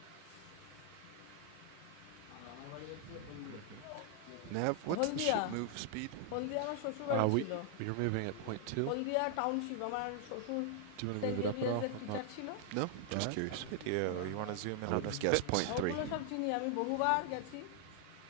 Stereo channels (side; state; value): both; different; correlation 0.00